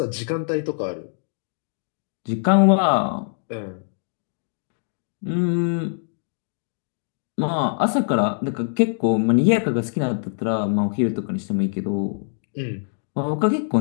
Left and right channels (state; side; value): silent; right; digital silence